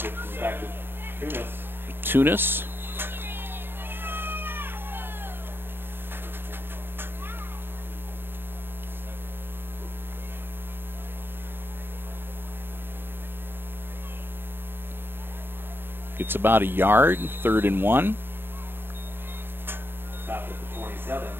Tunis. Gets about a yard, 3rd and 1. Stop at the 27,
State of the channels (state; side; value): late; left; 0.10 ms